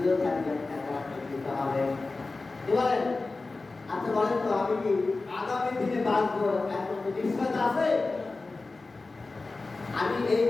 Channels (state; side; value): quieter; right; 3.6 dB